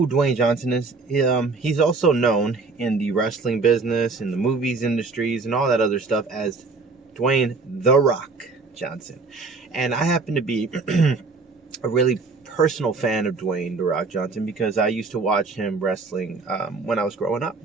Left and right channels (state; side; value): quieter; left; 4.1 dB